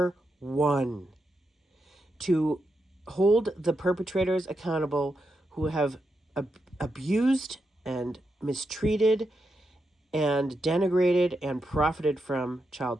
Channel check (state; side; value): normal; both; correlation 0.85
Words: one to hold the perpetrators accountable who have abused and mistreated and denigrated and profited from child